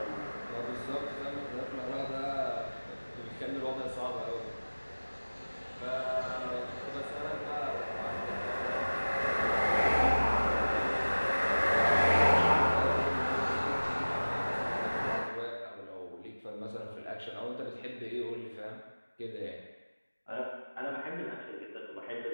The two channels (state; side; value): inverted; both; correlation -1.00